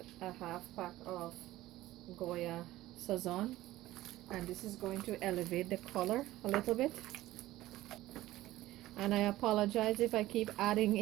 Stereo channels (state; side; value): quieter; left; 16.2 dB